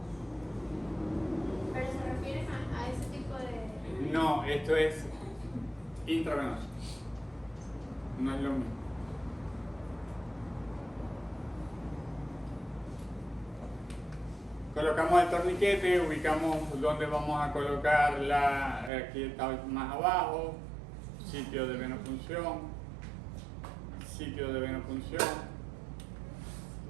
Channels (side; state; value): left; drops out; at 18.9 s